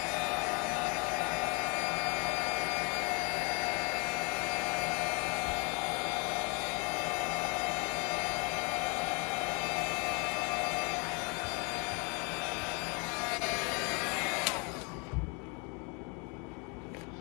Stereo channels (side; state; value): right; quieter; 32.6 dB